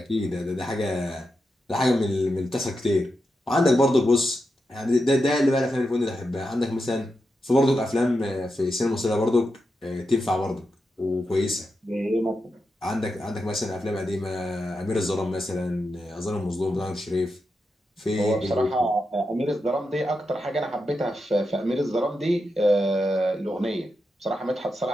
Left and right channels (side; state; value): both; normal; correlation 0.87